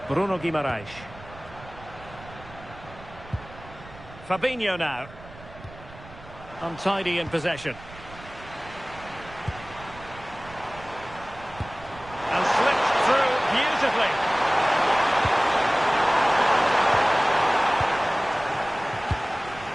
Bruno Guimaraes. Fabinho now. Untidy in possession. And slipped through beautifully.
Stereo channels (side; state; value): right; noise; rumble, 18 dB below the sound